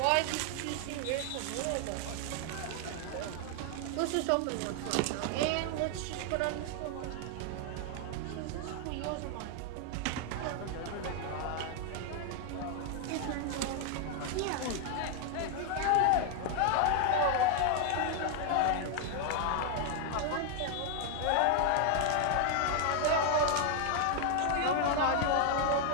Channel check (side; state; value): both; different; correlation 0.00